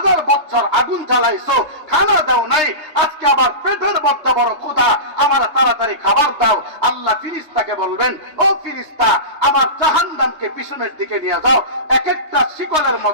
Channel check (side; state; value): left; late; 3.3 ms